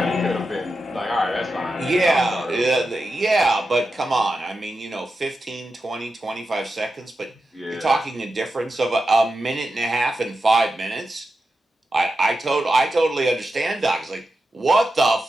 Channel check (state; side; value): normal; both; correlation 0.90